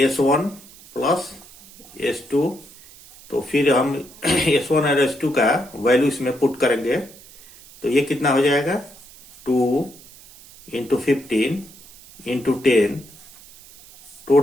प्लस S2। तो फिर हम S1 और S2 का वैल्यू इसमें पुट करेंगे तो ये कितना हो जाएगा 2 into 15 into 10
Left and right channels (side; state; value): right; noise; hiss, 22 dB below the sound